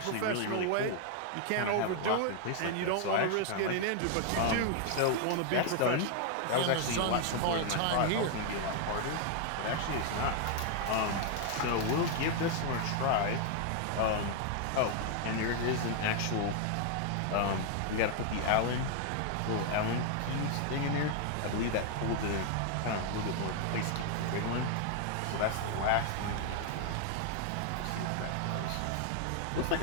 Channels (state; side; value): different; both; correlation 0.00